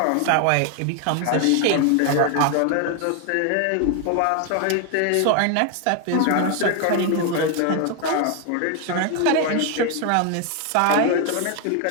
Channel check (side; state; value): both; different; correlation 0.01